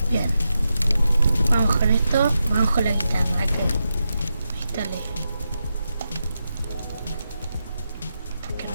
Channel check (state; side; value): inverted; both; correlation -0.88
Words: Bien. Vamos con esto. Vamos con la guitarra que instalé. ¿Por qué no